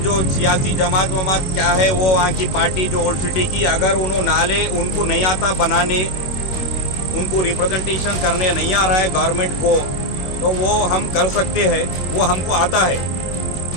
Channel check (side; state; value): right; late; 21 ms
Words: सियासी जमात वमात क्या है, वो वहाँ की पार्टी जो ओल्ड सिटी की, अगर उन्होंने नाले उनको नहीं आता बनाने, उनको रिप्रेजेंटेशन करने नहीं आ रहा है गवर्नमेंट को, तो वो हम कर सकते हैं, वो हमको आता है।